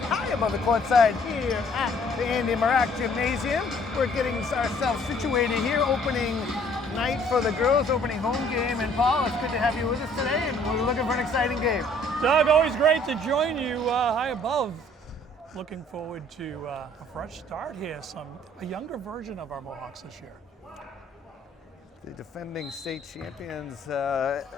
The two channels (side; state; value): both; normal; correlation 0.59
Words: above the courtside here at the Andy Marak Gymnasium. We're getting ourselves situated here, opening night for the girls, opening home game. And Paul, it's good to have you with us today, and we're looking for an exciting game. Doug, always great to join you high above. Looking forward to a fresh start here, a younger version of our Mohawks this year. The defending state champions